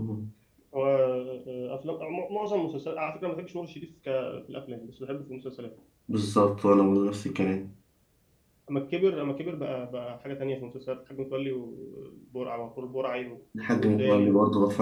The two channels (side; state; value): both; identical; correlation 1.00